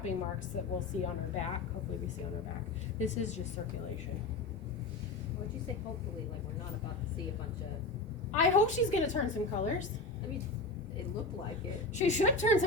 marks that we'll see on her back. Hopefully we see on her back. This is just circulation. Would you say hopefully, like we're not about to see a bunch of, I hope she's gonna turn some colors. I mean, it looked like it. She should turn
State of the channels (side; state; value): right; quieter; 3.3 dB